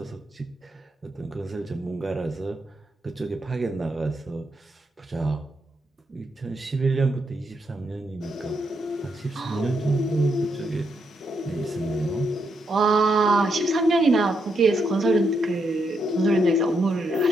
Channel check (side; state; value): both; normal; correlation 0.79